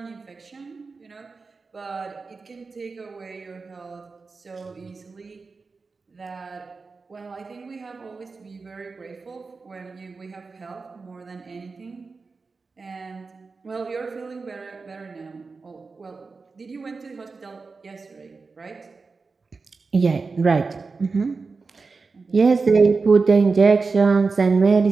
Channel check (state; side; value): quieter; left; 4.3 dB